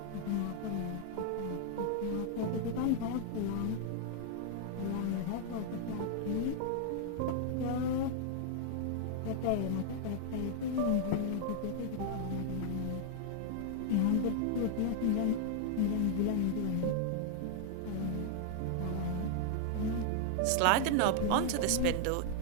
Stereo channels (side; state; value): both; different; correlation -0.01